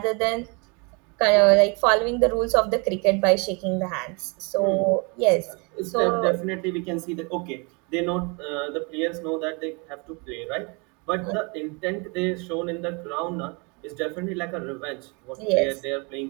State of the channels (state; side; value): quieter; left; 31.2 dB